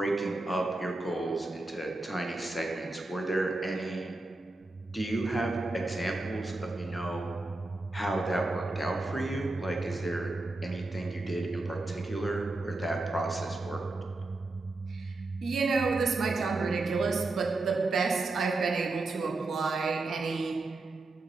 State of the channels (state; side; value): quieter; left; 3.0 dB